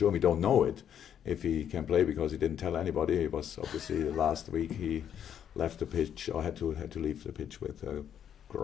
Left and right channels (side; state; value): right; quieter; 9.2 dB